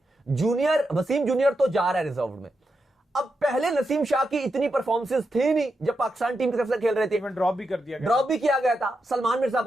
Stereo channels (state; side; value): normal; both; correlation 0.86